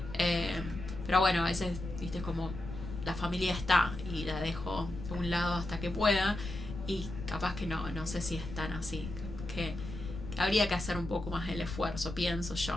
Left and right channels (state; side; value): noise; left; rumble, 9 dB below the sound